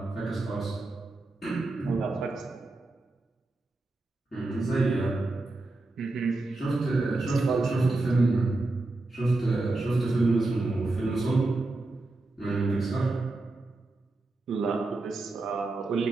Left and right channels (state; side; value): quieter; left; 3.0 dB